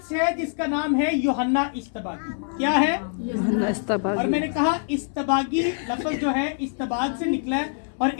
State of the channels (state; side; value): silent; right; digital silence